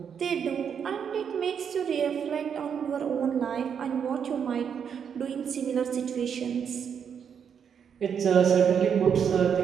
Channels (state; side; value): quieter; left; 7.5 dB